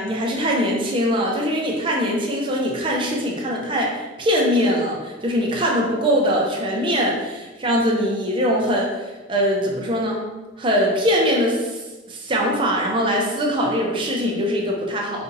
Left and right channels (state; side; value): normal; both; correlation 0.25